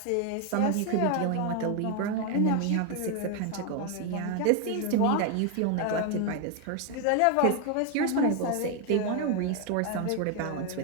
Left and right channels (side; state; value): both; different; correlation 0.01